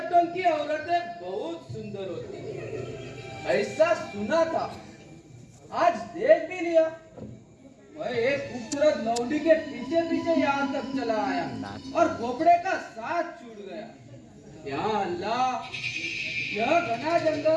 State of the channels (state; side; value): identical; both; correlation 1.00